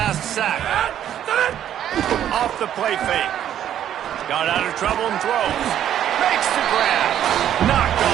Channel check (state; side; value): quieter; left; 10.6 dB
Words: sack. Off the play fake. Got out of trouble and throws. Makes the grab. Knocked